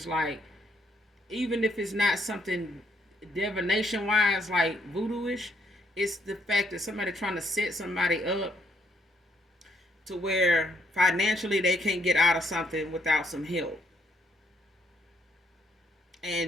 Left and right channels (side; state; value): both; normal; correlation 0.72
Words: like, even if it's not something divination wise like voodoo-ish, It's the fact that somebody trying to set somebody up to where financially they can't get out of something without some help.